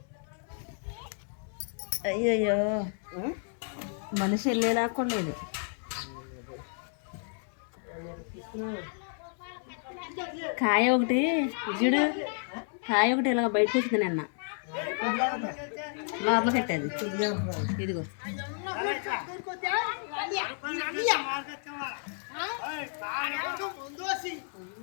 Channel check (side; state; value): right; silent; 57 dB below the other